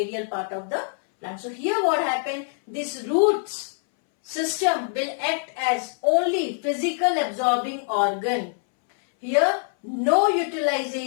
part of the plant. So here what happened, this roots system will act as only physical absorbing organ. Here no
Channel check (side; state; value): right; silent; 62 dB below the other